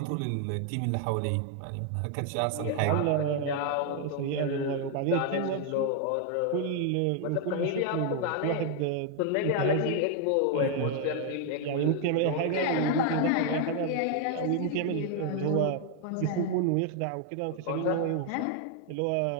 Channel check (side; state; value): both; different; correlation 0.00